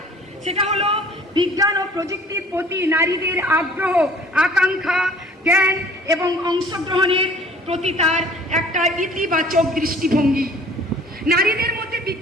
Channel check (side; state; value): both; normal; correlation 0.51